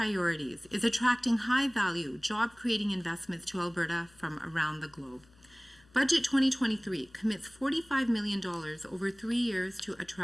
is attracting high-value, job-creating investments to Alberta from around the globe. Budget 2023 commits $45 million over 3 years to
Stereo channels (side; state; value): left; noise; hum, 29 dB below the sound